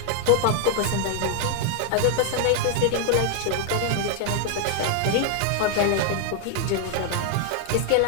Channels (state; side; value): different; both; correlation 0.00